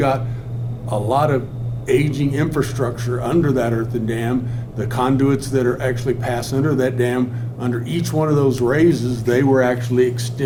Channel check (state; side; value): identical; both; correlation 1.00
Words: a lot of aging infrastructure under that earthen dam. The conduits that are actually pass under that dam, under each one of those raises, they were actually